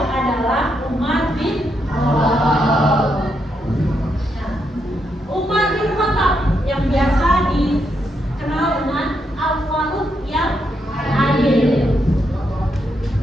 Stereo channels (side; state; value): both; normal; correlation 0.80